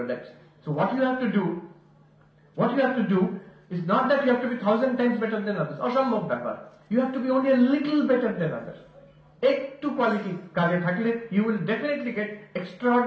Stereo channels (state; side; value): identical; both; correlation 1.00